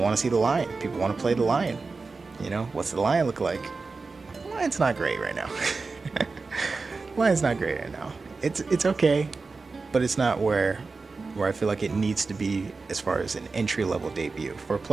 to see the lion. People want to play the lion. You know, what's the lion look like? The lion's not great right now. Lion's not great right now. It's okay, but it's not where where I feel like it needs to be as far as an entry level debut for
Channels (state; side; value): quieter; left; 4.1 dB